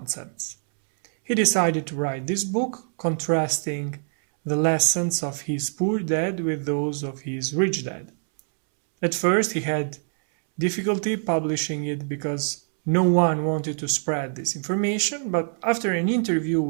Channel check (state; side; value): silent; left; 62 dB below the other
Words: He decided to write this book, contrasting the lessons of his poor dad with those of his rich dad. At first, he had difficulty publishing it because no one wanted to spread this information, but after an interview